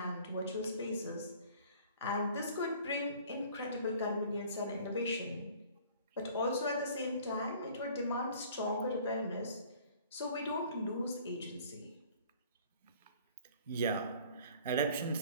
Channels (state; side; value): inverted; both; correlation -0.51